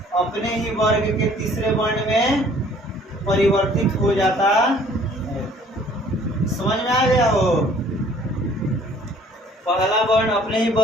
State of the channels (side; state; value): both; normal; correlation 0.56